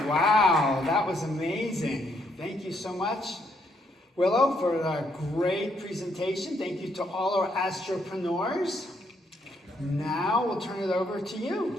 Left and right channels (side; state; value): both; normal; correlation 0.73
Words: Wow. That was amazing. Thank you so much, Willow, for a great presentation. Thank you to all our astropreneurs. Now we'll turn it over to